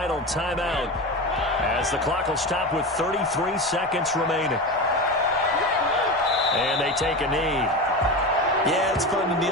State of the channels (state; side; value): normal; both; correlation 0.24